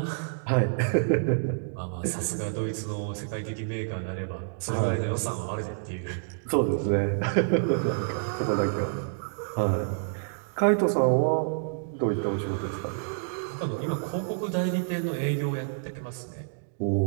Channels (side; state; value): left; silent; digital silence